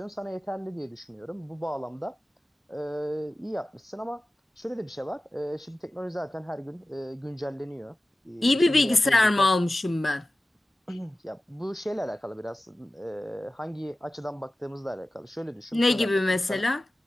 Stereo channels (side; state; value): both; normal; correlation 0.96